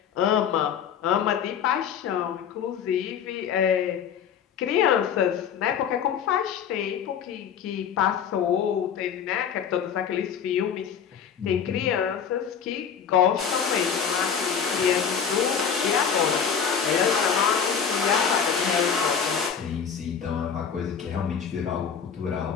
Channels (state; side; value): quieter; right; 7.4 dB